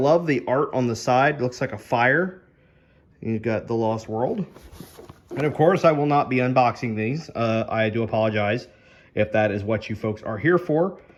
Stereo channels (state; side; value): identical; both; correlation 1.00